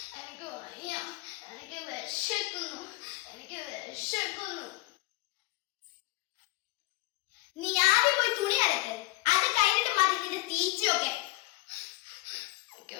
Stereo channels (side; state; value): right; quieter; 20.3 dB